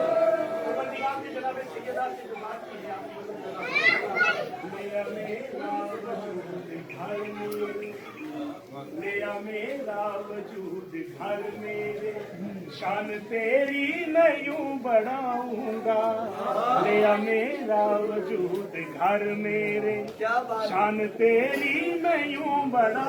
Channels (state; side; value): identical; both; correlation 1.00